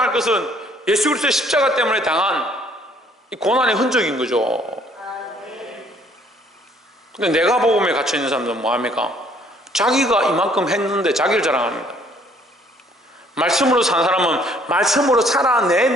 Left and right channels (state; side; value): normal; both; correlation 0.61